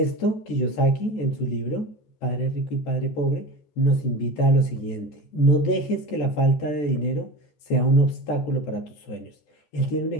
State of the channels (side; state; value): right; late; 14 ms